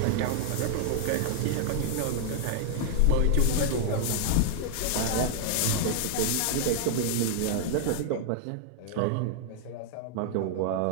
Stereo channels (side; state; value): both; different; correlation 0.00